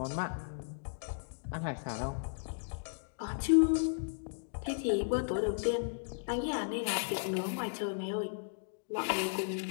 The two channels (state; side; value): silent; right; digital silence